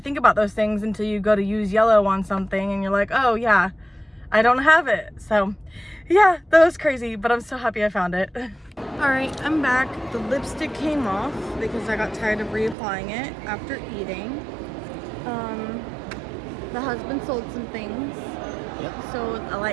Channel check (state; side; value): drops out; left; at 12.8 s